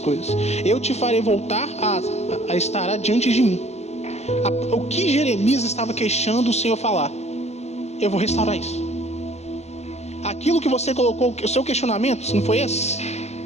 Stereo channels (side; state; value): right; late; 0.31 ms